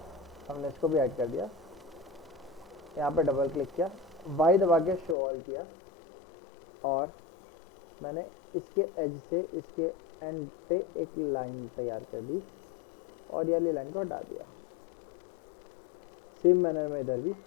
हमने इसको भी हाइड कर दिया। यहाँ पे डबल क्लिक किया, Y दबा के शो ऑल किया, और मैंने इसके एज से इसके एंड पे एक लाइन तैयार कर दी, और ये वाली लाइन को हटा दिया। सेम मैनर में इधर भी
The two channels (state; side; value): drops out; right; at 5.2 s